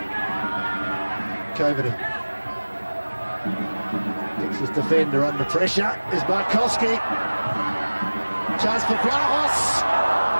Coveney. Gets his defender under pressure. Is Markowski. Chance for Vlahos.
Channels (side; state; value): both; inverted; correlation -1.00